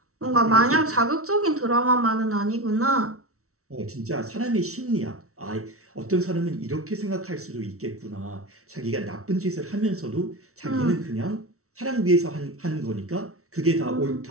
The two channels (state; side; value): late; left; 0.63 ms